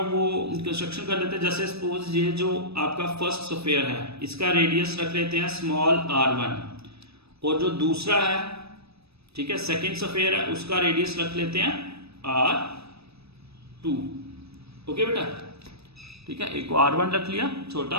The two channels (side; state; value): left; late; 0.78 ms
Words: वो कंस्ट्रक्शन कर लेते हैं। जैसे सपोज ये जो आपका फर्स्ट स्फीयर है इसका रेडियस रख लेते हैं स्मॉल r1, और जो दूसरा है, ठीक है, सेकंड स्फीयर है, उसका रेडियस रख लेते हैं r2। ओके बेटा, ठीक है, एक को r1 रख लिया छोटा,